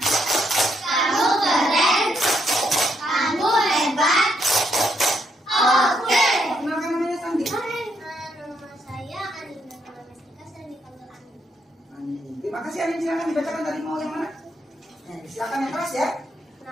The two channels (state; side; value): normal; both; correlation 0.76